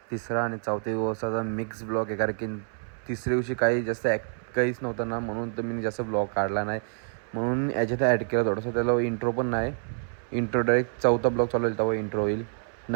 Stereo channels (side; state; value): left; silent; 60 dB below the other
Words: तिसरा आणि चौथ्या दिवसाचा मिक्स ब्लॉग आहे. कारण की तिसऱ्या दिवशी काही जास्त काहीच नव्हतं ना, म्हणून तर मी जास्त ब्लॉग काढला नाही. म्हणून याच्यात ॲड केला थोडंसं. त्याला इंट्रो पण नाही. इंट्रो डायरेक्ट चौथा ब्लॉग चालू होईल तेव्हा इंट्रो होईल.